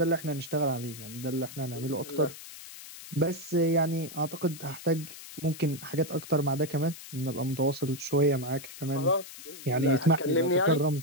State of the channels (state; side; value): noise; left; hiss, 14 dB below the sound